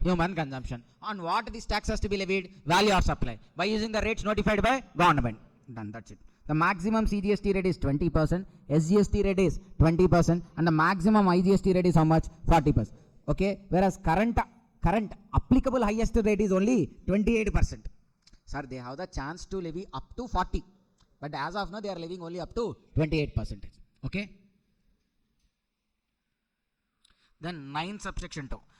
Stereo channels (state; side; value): identical; both; correlation 1.00